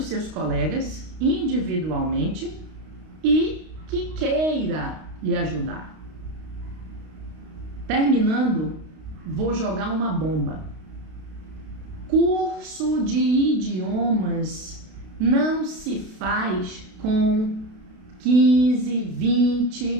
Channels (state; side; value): late; left; 32 ms